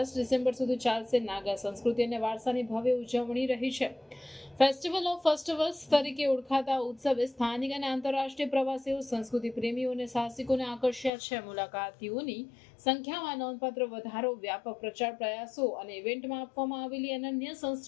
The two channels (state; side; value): drops out; right; at 11.1 s